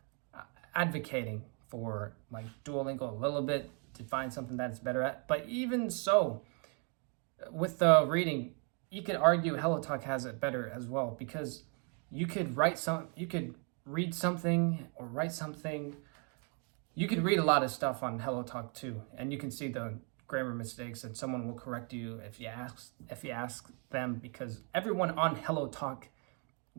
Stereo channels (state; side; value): quieter; left; 37.3 dB